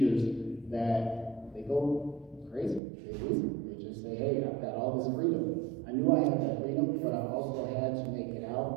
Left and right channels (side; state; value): left; drops out; at 2.8 s